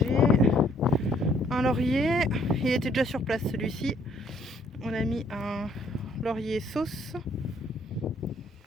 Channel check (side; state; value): both; normal; correlation 0.64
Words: Un laurier, il était déjà sur place celui-ci. On a mis un laurier sauce.